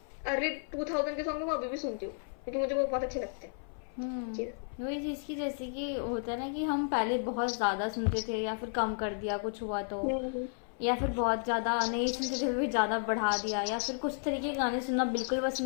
अर्ली 2000 के सॉन्ग में, वो अभी भी सुनती हूँ क्योंकि मुझे वो बहुत अच्छे लगते हैं। चीज़। वही चीज़ की, जैसे कि होता है ना कि हम पहले बहुत ज़्यादा सुनते थे, या फिर कम कर दिया कुछ हुआ तो, हम्म, या फिर बहुत ज़्यादा नहीं सुनते थे फिर ज़्यादा बढ़ा दिया, या फिर कुछ तरीके के गाने सुनना बिल्कुल पसंद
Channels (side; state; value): right; silent; 56 dB below the other